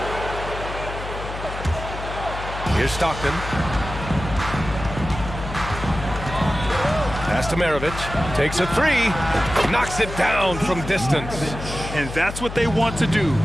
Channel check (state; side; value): noise; left; hum, 9 dB below the sound